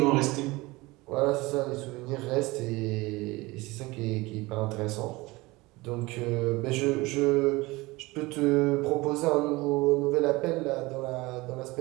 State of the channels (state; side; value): quieter; left; 21.8 dB